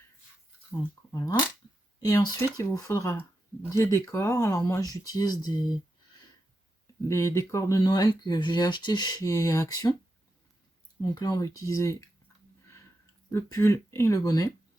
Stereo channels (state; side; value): normal; both; correlation 0.88